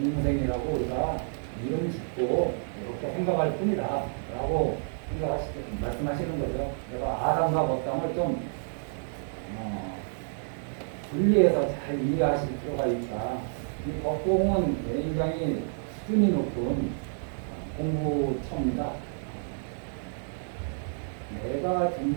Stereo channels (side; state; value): left; silent; 58 dB below the other